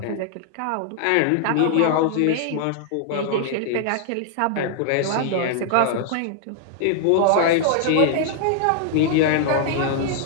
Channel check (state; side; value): different; both; correlation -0.01